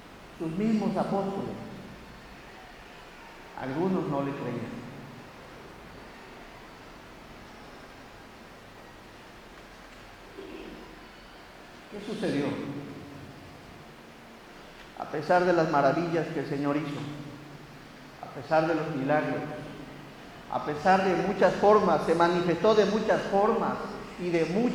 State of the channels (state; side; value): identical; both; correlation 1.00